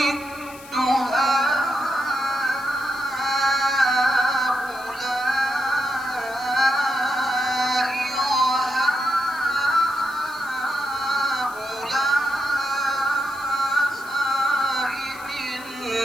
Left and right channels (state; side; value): noise; left; hiss, 19 dB below the sound